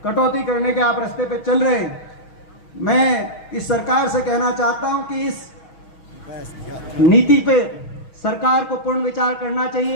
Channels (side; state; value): right; late; 6.2 ms